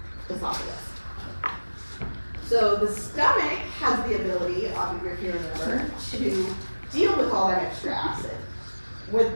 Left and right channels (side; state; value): both; inverted; correlation -1.00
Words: esophagus. So the stomach has the ability, if you remember, to deal with all that extra acid